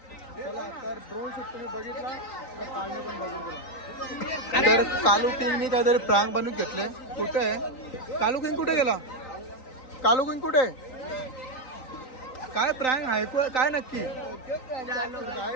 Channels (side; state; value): right; late; 3.9 ms